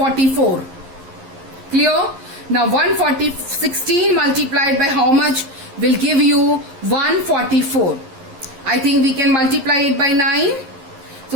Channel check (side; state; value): left; late; 11 ms